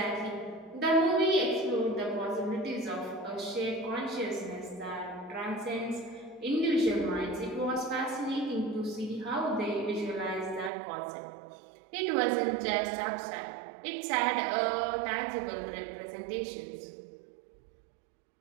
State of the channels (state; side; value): drops out; left; at 10.7 s